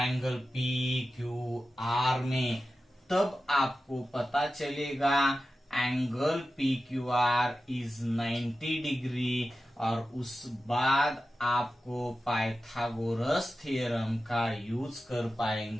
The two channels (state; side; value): normal; both; correlation 0.93